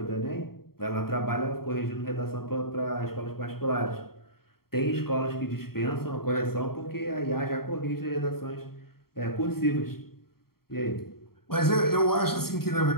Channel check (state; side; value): late; right; 0.94 ms